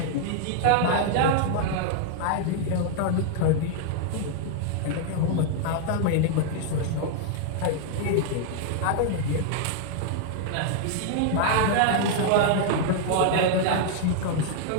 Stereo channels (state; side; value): different; both; correlation 0.00